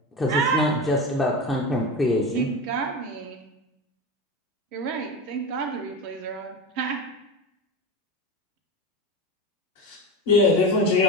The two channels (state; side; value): normal; both; correlation 0.24